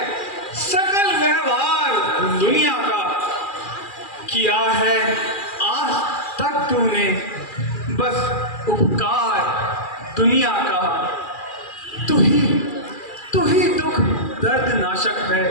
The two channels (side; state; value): right; late; 2.4 ms